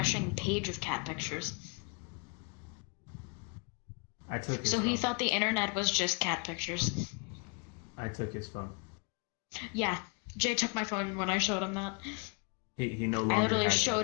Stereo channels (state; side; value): quieter; right; 35.1 dB